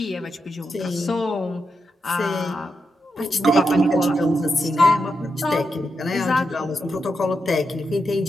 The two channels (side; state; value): both; normal; correlation 0.85